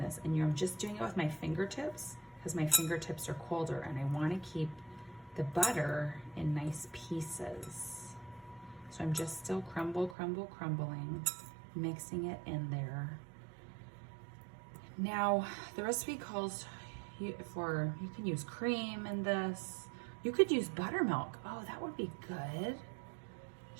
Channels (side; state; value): left; drops out; at 10.2 s